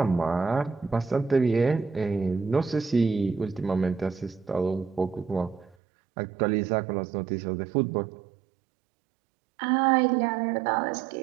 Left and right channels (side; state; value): left; drops out; at 5.8 s